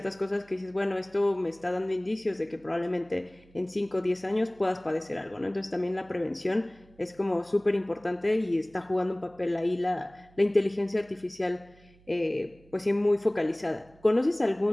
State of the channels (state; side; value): noise; right; hum, 27 dB below the sound